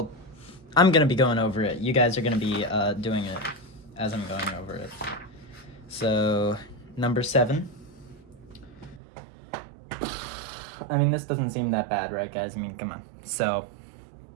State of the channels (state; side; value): drops out; left; at 9.0 s